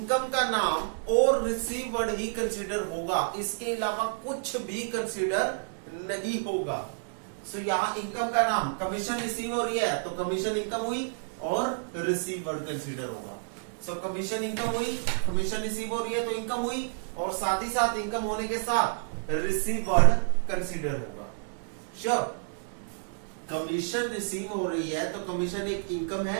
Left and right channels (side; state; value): left; silent; digital silence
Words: का नाम और रिसीवर्ड ही कंसीडर होगा, इसके अलावा कुछ भी कंसीडर नहीं होगा। सो यहां इनकम का नाम, कमीशन रिसीव हो रही है तो कमीशन इनकम हुई और रिसीवर्ड कंसीडर होगा। सो कमीशन इनकम हुई, कमीशन रिसीव हो रही है तो इनकम हुई, और साथ ही साथ इनकम होने के साथ रिसीवर्ड कंसीडर होगा। श्योर, कमीशन रिसीव हो रही है तो कमीशन एक इनकम